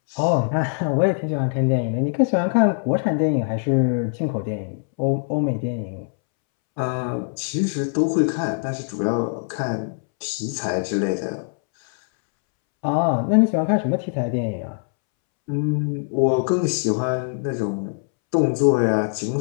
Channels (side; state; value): right; silent; 64 dB below the other